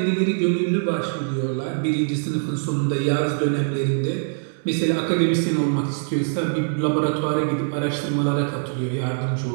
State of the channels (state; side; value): silent; left; digital silence